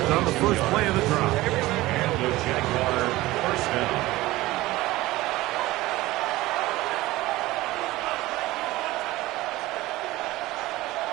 on the first play of the drive. And the Jaguar first down.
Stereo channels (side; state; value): left; quieter; 18.2 dB